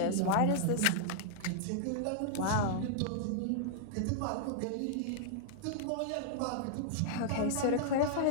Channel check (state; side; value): different; both; correlation -0.01